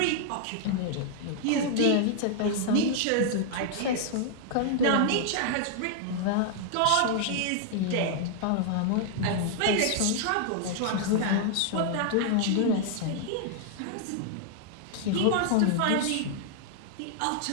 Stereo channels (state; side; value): different; both; correlation 0.00